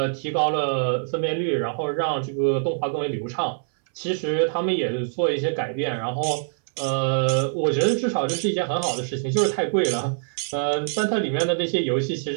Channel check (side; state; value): left; silent; 62 dB below the other